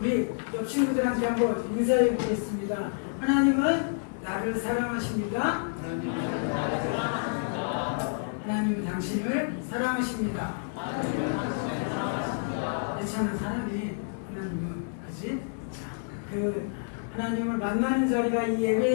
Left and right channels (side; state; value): right; silent; digital silence